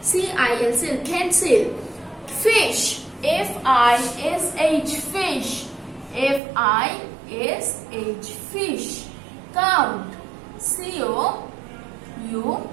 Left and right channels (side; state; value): left; drops out; at 6.4 s